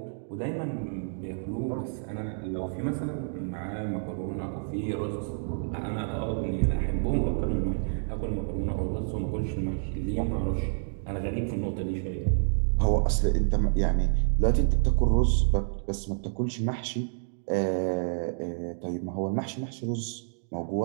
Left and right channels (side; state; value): left; silent; digital silence